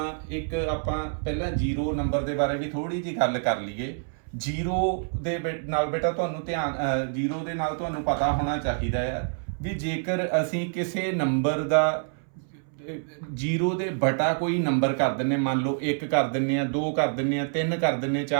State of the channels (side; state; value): left; silent; 60 dB below the other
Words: ਇੱਕ ਆਪਾਂ ਪਹਿਲਾਂ 0 ਨੰਬਰ ਦੇ ਬਾਰੇ ਵੀ ਥੋੜੀ ਜਿਹੀ ਗੱਲ ਕਰ ਲਈਏ। 0 ਦੇ ਨਾਲ ਬੇਟਾ ਤੁਹਾਨੂੰ ਧਿਆਨ 0 ਦੇ ਨਾਲ ਤੁਹਾਨੂੰ ਪਤਾ ਹੋਣਾ ਚਾਹੀਦਾ ਆ ਵੀ ਜੇਕਰ ਅਸੀਂ ਕਿਸੇ ਨੰਬਰ ਦਾ 0 ਦੇ ਬਟਾ ਕੋਈ ਨੰਬਰ ਕਰ ਦਿੰਦੇ, ਮੰਨ ਲਓ 1 ਕਰ ਦਿੰਦੇ ਆ, 2 ਕਰ ਦਿੰਦੇ ਆ, 3 ਕਰ ਦਿੰਦੇ ਆ,